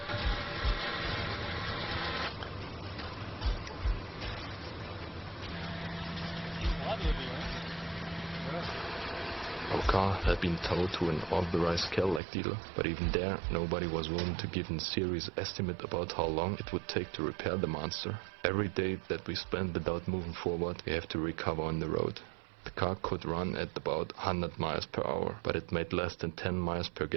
Our car had been towed to an authorized Cadillac dealer, but even there nobody was willing to give a serious estimate about how long it would take to repair the monster. Every day that we spent without moving forward, we have to recover on the road. The car could run at about 100 miles per hour, but it made less than 10 miles per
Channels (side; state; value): left; drops out; at 12.2 s